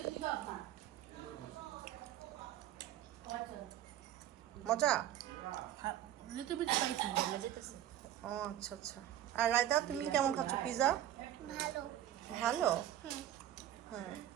মজা? Little bit spicy. ও আচ্ছা আচ্ছা। আর রায়তা তুমি কেমন খাচ্ছ পিৎজা? ভালো। ভালো? হুম।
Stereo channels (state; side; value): quieter; left; 12.0 dB